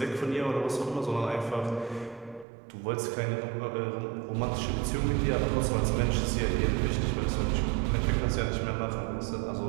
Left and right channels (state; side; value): drops out; left; at 2.5 s